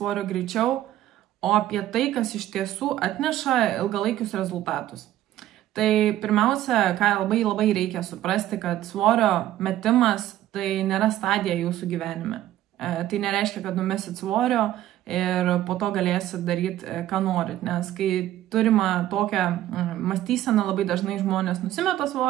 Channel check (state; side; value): quieter; left; 13.4 dB